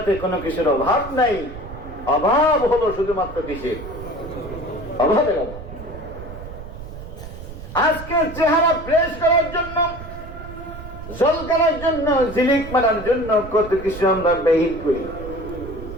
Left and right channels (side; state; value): right; noise; rumble, 12 dB below the sound